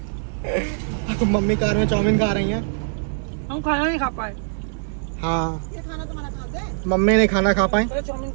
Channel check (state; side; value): silent; left; digital silence